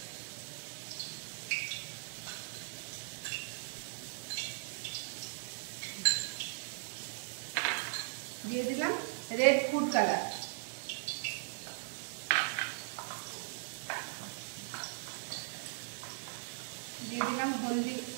দিয়ে দিলাম রেড ফুড কালার, দিয়ে দিলাম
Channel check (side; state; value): left; silent; 52 dB below the other